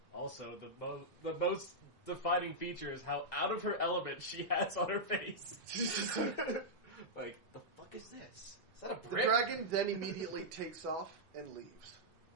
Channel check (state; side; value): normal; both; correlation -0.08